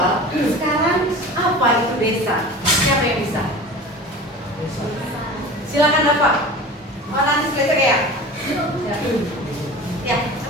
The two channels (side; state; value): both; normal; correlation 0.36